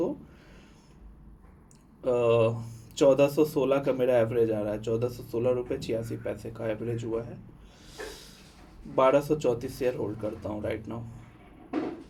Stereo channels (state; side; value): identical; both; correlation 1.00